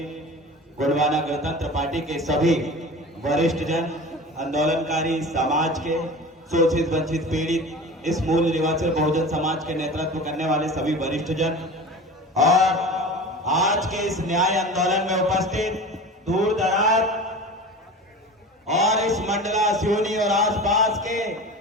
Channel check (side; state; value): both; normal; correlation 0.35